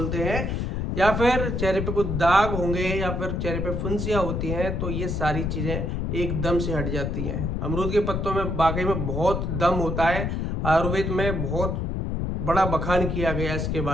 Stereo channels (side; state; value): left; noise; rumble, 1 dB below the sound